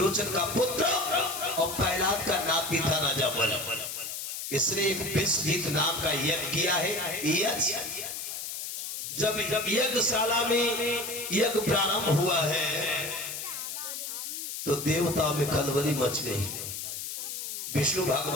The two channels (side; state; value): left; noise; hiss, 6 dB below the sound